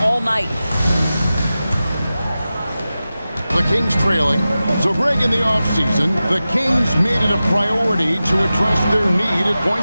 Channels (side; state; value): both; inverted; correlation -0.94